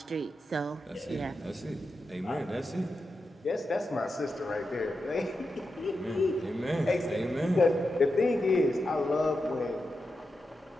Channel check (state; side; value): normal; both; correlation 0.88